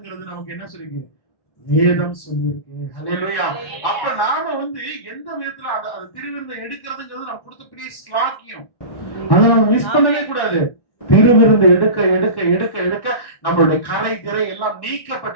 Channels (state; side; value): late; right; 1.1 ms